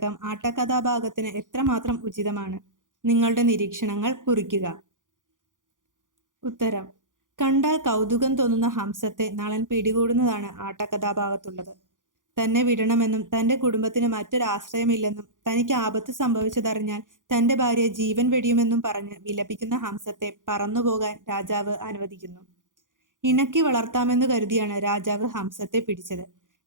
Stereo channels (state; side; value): late; left; 0.88 ms